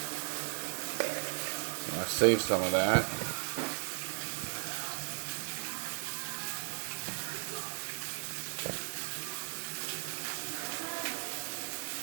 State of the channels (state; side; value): silent; left; digital silence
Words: I'll save some of that.